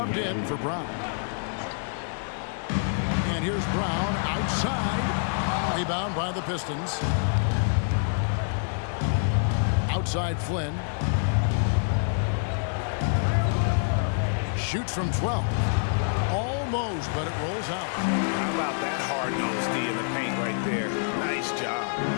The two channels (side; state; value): right; silent; 60 dB below the other